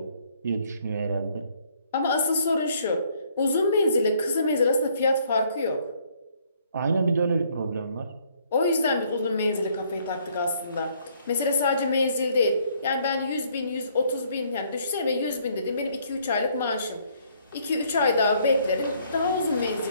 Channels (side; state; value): both; inverted; correlation -0.65